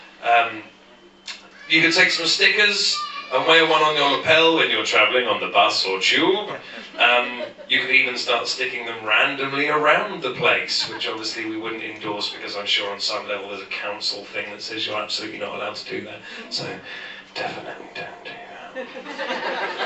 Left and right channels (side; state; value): both; identical; correlation 1.00